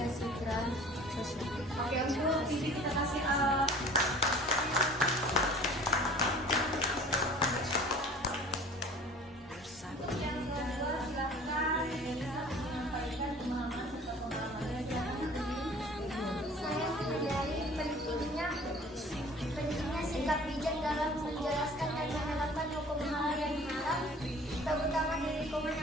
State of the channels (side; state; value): both; normal; correlation 0.47